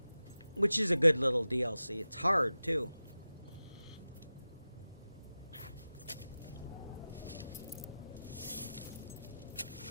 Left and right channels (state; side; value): inverted; both; correlation -0.95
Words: Which is a good little DLC. It's hard, too.